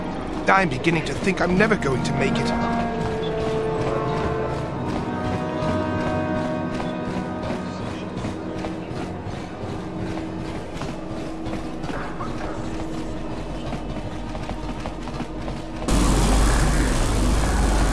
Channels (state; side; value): identical; both; correlation 1.00